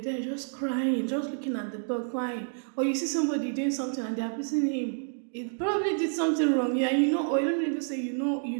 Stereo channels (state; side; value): silent; left; 59 dB below the other